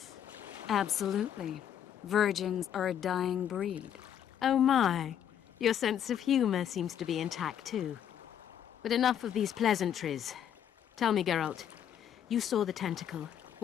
Absolutely. Virgins are a dying breed. Oh my. Your sense of humour seems to be intact too. But enough of these pleasantries. Tell me, Geralt, you saw the tentacle.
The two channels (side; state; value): right; quieter; 9.6 dB